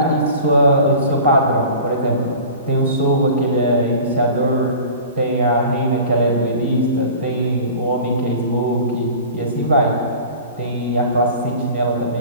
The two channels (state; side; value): inverted; both; correlation -0.40